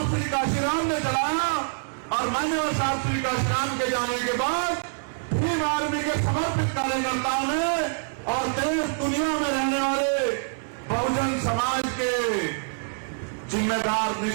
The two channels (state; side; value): silent; left; 61 dB below the other